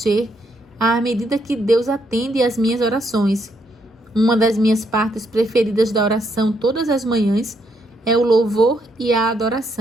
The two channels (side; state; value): both; normal; correlation 0.75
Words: à medida que Deus atende às minhas orações. Uma das minhas partes preferidas da oração todas as manhãs é o louvor e a